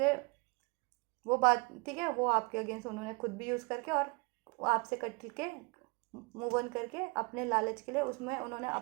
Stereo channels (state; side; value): quieter; left; 28.3 dB